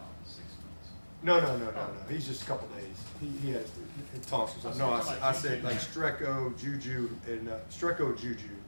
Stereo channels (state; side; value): inverted; both; correlation -1.00